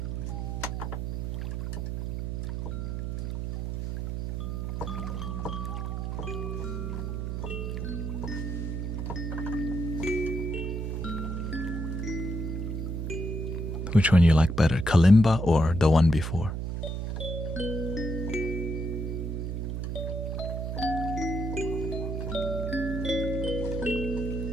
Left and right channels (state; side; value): noise; right; hum, 3 dB below the sound